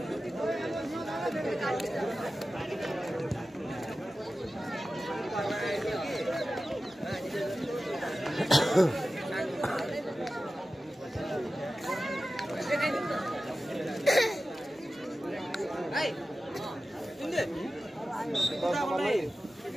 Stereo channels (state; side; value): normal; both; correlation 0.94